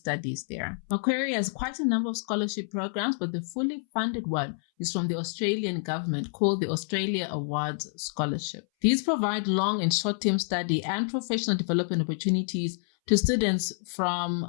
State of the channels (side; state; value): right; silent; 59 dB below the other